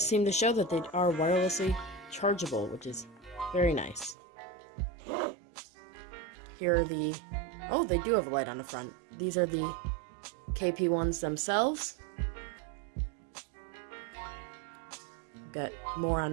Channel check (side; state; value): left; drops out; at 4.2 s